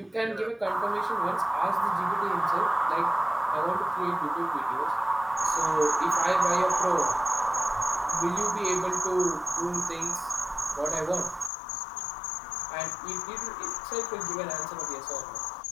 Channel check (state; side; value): drops out; right; at 11.5 s